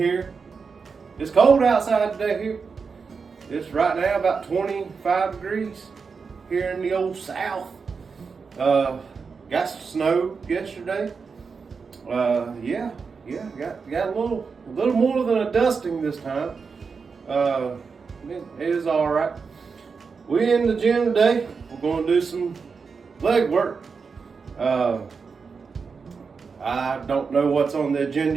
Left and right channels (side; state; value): left; quieter; 5.3 dB